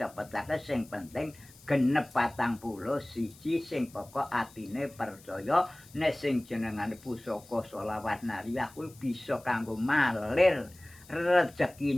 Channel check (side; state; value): left; noise; hiss, 24 dB below the sound